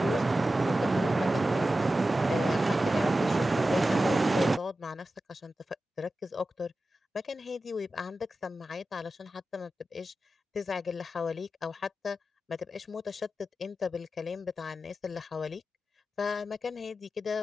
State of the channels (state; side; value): normal; both; correlation 0.93